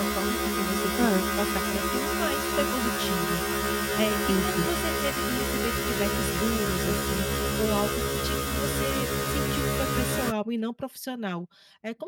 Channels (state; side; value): identical; both; correlation 1.00